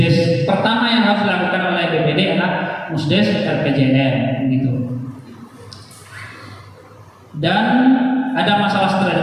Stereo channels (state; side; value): identical; both; correlation 1.00